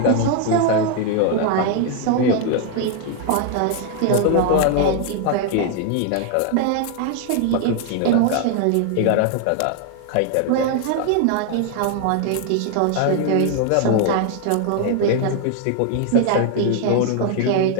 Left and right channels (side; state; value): both; different; correlation 0.00